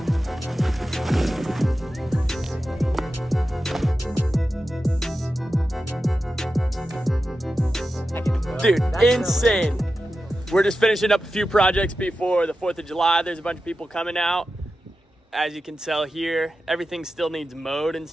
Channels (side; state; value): both; normal; correlation 0.92